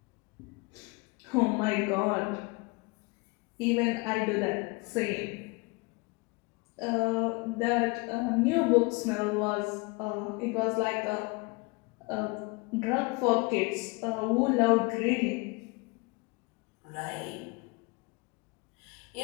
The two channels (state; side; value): quieter; right; 26.9 dB